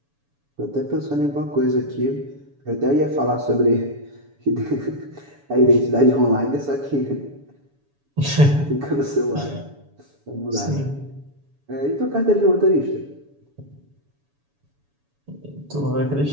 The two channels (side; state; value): left; late; 7.1 ms